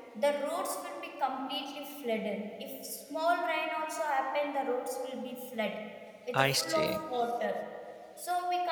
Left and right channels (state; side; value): identical; both; correlation 1.00